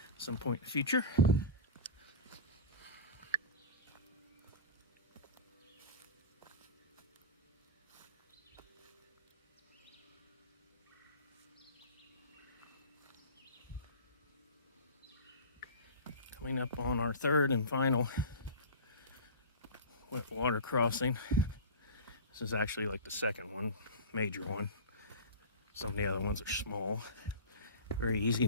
at some point in the future. Coming up on our third and final wet water crossing. This is actually like the second one, major one. Some of the other ones are small. Very easy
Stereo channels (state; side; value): inverted; both; correlation -0.31